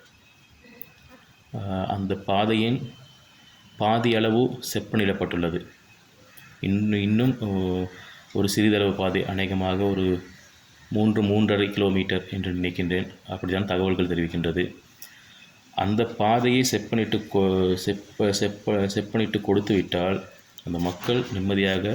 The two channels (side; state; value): both; identical; correlation 1.00